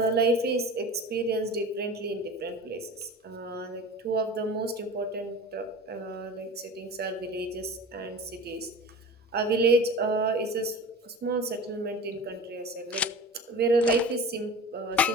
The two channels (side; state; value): both; normal; correlation 0.36